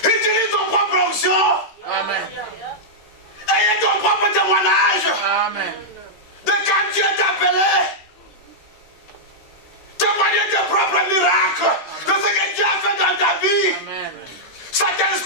Utilise ton propre onction. Amen. Ayez ton propre témoignage. Amen. De quand Dieu t'a appelé. Témoigner tes propres miracles. De ce que Dieu a fait dans ta vie. Amen.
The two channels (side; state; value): right; late; 13 ms